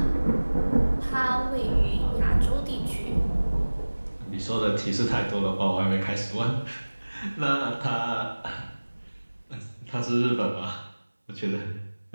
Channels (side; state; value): both; inverted; correlation -1.00